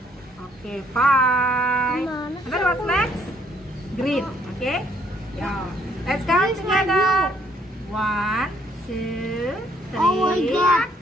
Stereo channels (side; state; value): both; normal; correlation 0.67